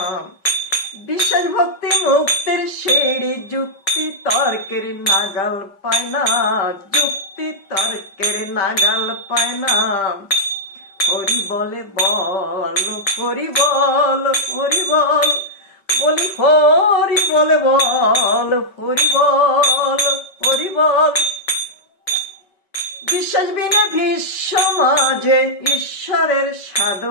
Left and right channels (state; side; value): late; right; 5.4 ms